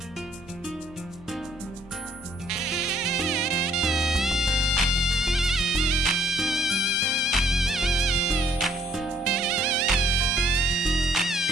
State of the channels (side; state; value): both; normal; correlation 0.64